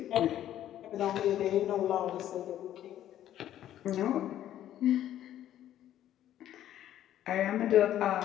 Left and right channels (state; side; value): quieter; right; 11.9 dB